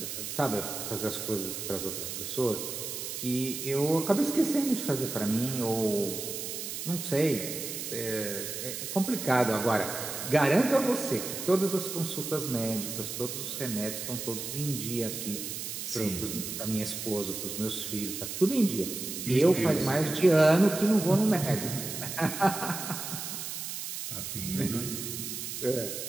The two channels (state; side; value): noise; right; hiss, 6 dB below the sound